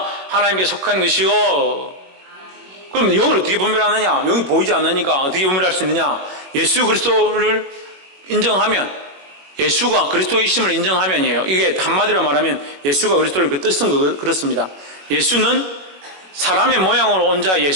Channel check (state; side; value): late; left; 21 ms